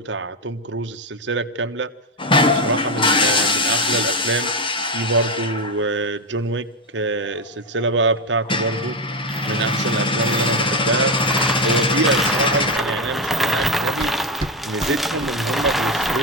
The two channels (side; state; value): both; normal; correlation 0.11